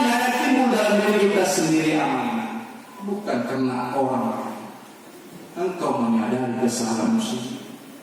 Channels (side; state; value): both; identical; correlation 1.00